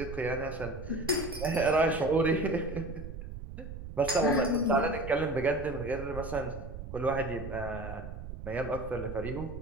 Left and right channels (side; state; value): right; noise; rumble, 9 dB below the sound